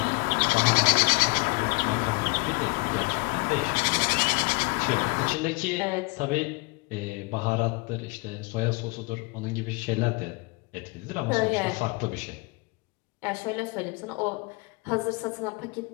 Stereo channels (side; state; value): right; quieter; 28.1 dB